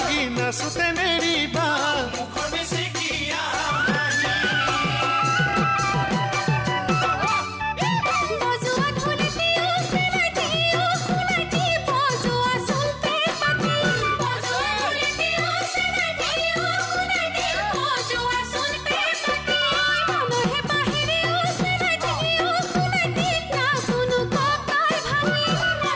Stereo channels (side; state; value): both; identical; correlation 1.00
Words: নাচোতে নেৰিবা মুখৰ বেছিকিয়া